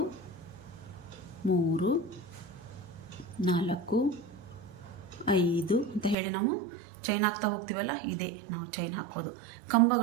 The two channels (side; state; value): left; drops out; at 6.2 s